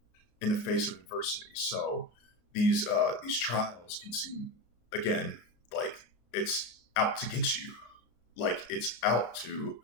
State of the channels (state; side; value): late; right; 33 ms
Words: in the face of adversity. So these trials can seem, again, like it's out to get you, like it's out to